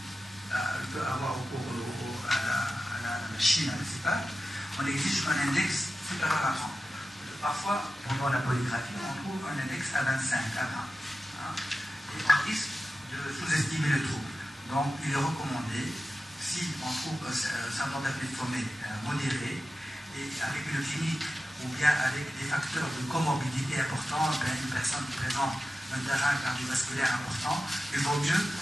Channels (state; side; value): normal; both; correlation 0.93